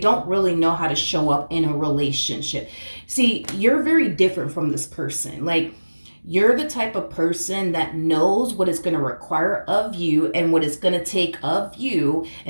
really know how to show up in a relationship. See, you're very different from this person. Like, you're the type of person that knows what it's going to require of you and what it's going to take of you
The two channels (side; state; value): both; inverted; correlation -1.00